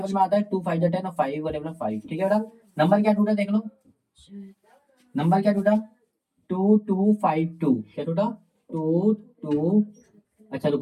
में आता है, 2 5 10 और 5 का टेबल में 5, ठीक है बेटा। नंबर क्या टूटा देख लो, नंबर क्या टूटा 2 2 5 2, क्या टूटा 2 2, अच्छा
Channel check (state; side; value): identical; both; correlation 1.00